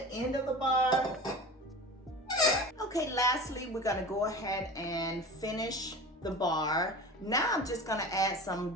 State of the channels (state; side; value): normal; both; correlation 0.34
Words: end of the bar. Okay, lastly, we're gonna go ahead and finish the bar. Now I'm just gonna add some